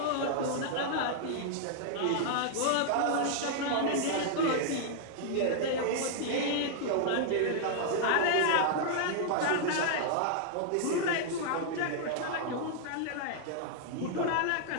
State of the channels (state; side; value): different; both; correlation -0.01